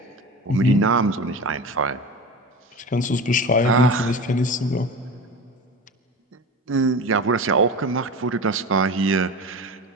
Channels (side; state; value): both; normal; correlation 0.29